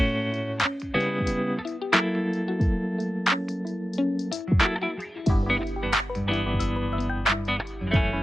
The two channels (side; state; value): both; normal; correlation 0.94